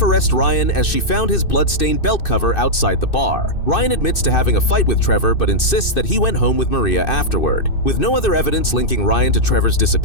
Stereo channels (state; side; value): late; right; 2.6 ms